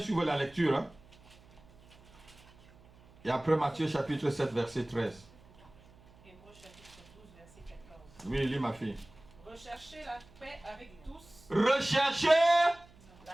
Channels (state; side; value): noise; right; hum, 25 dB below the sound